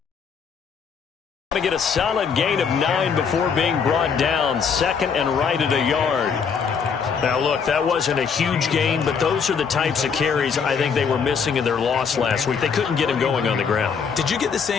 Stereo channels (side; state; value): right; quieter; 6.3 dB